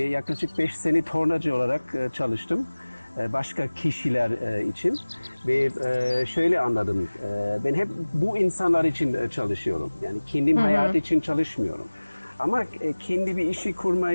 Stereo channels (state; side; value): inverted; both; correlation -1.00